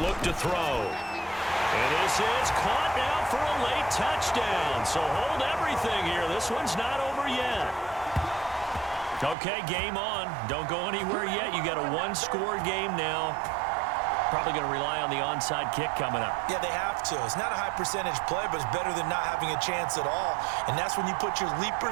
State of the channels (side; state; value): left; drops out; at 9.3 s